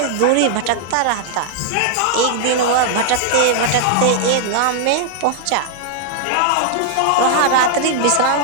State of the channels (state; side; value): different; both; correlation -0.01